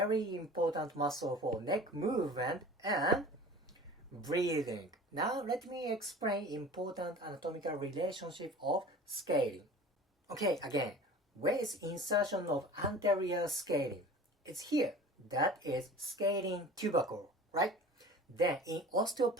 important muscle for neck movement and breathing. Now let me explain important anatomical relationship of scaling. Okay, again, where is insertion of anterior scalene? It's here. That is scalene tubercle, right? Then in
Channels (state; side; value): normal; both; correlation 0.41